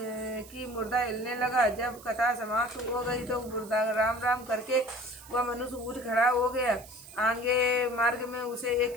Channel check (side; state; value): right; noise; hiss, 20 dB below the sound